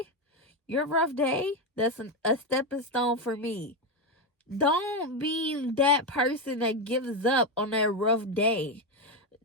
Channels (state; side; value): normal; both; correlation 0.09